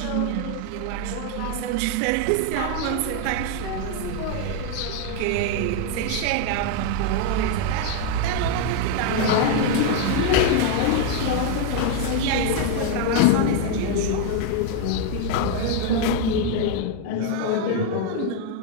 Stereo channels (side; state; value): both; different; correlation 0.01